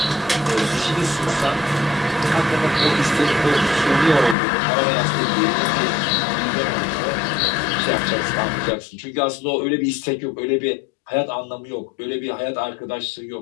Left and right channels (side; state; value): right; drops out; at 4.4 s